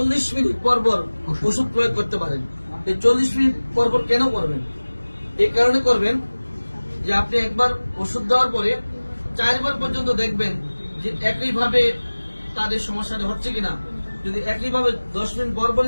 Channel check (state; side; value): inverted; both; correlation -1.00